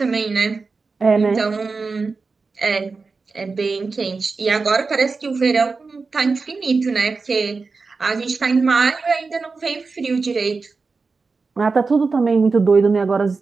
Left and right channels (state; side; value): quieter; left; 4.3 dB